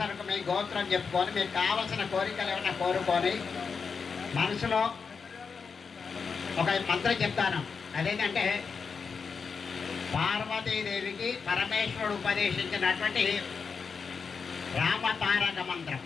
మీ గోత్రం చెప్పుకొని మీకు కావలసిన కోరికలు ఏమైనా కోరుకొని మనసులో ఒక మంత్రం చెప్తాను. అదేంటంటే పార్వతీదేవికి పరమేశ్వరుడు ఉపదేశించినటువంటి రామతారక మంత్రం.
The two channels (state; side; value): quieter; right; 5.5 dB